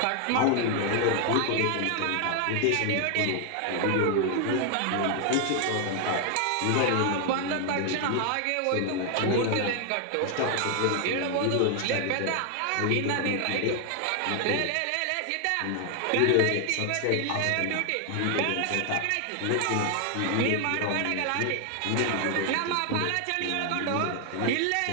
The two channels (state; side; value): different; both; correlation 0.00